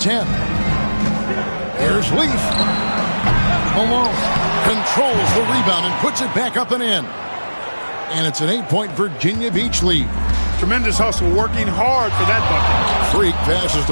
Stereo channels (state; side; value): inverted; both; correlation -1.00